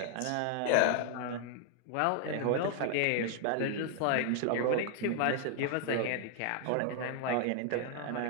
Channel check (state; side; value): different; both; correlation 0.00